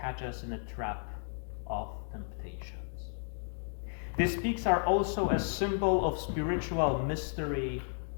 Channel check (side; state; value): right; silent; digital silence